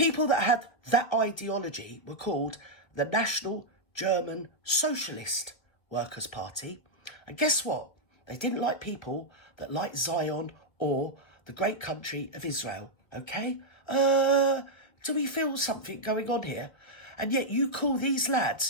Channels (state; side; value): late; right; 1.7 ms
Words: that had that ideology were called the National German Socialist Workers' Party. And guess what? They didn't like people that liked Zion or the great country of Israel. Okay? Do we feel something going on here? And yet you call these